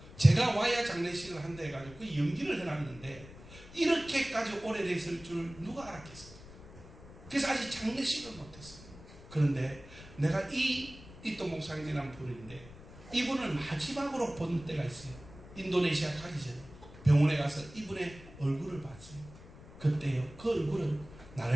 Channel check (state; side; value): noise; left; rumble, 18 dB below the sound